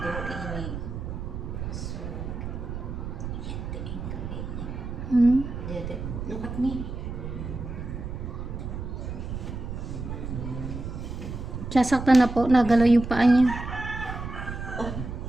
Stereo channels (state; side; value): noise; right; rumble, 6 dB below the sound